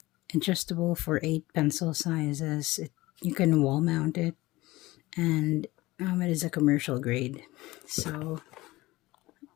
adjustable for 8 pencil sizes. You can wall mount it, and it is a commercial grade. So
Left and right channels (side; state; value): right; quieter; 19.4 dB